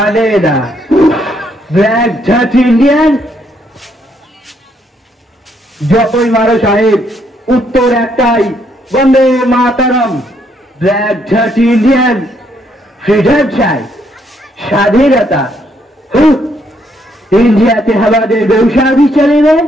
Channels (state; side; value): normal; both; correlation 0.72